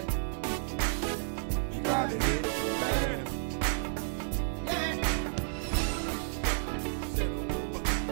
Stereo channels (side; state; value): left; silent; 57 dB below the other